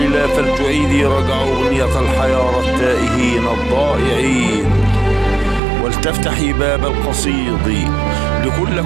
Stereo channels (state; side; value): drops out; left; at 5.6 s